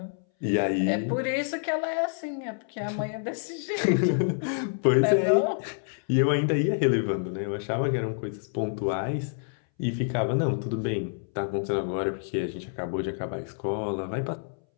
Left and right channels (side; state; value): right; silent; 60 dB below the other